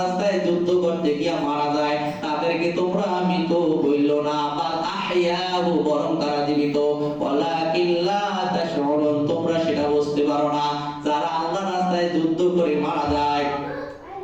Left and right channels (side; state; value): both; identical; correlation 1.00